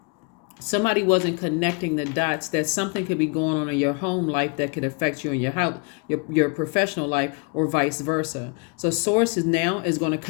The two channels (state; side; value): quieter; right; 34.0 dB